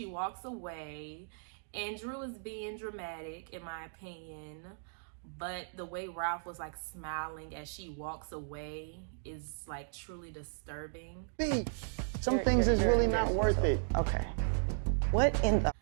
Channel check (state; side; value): silent; left; digital silence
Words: walks away, and Drew is being dramatic, in my opinion. But the way Ralph was like smiling as she walks away is like truly disturbing. Some things is really not worth it. Okay. What in the?